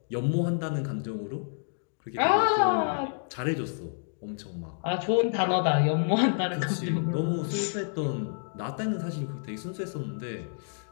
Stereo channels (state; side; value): silent; right; digital silence